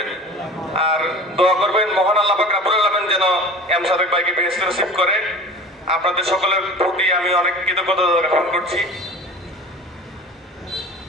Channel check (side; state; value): both; normal; correlation 0.38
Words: আর দোয়া করবেন মহান আল্লাহ পাক রব্বুল আলামিন যেন এম সাদেক ভাইকে বেহেশতে নসিব করে। আপনাদের সকলের প্রতি আমি অনেক কৃতজ্ঞতা জ্ঞাপন করছি।